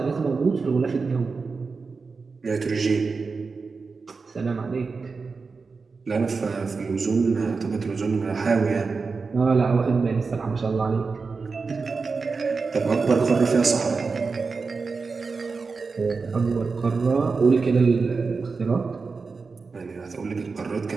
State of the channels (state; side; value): quieter; left; 4.6 dB